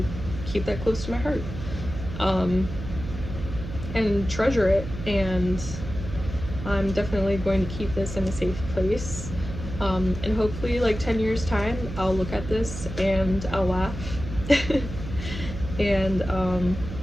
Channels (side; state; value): right; noise; hum, 9 dB below the sound